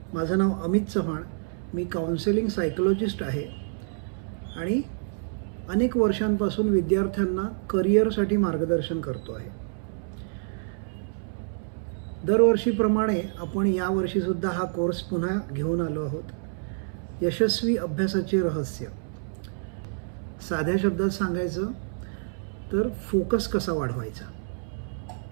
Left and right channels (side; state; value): left; silent; 60 dB below the other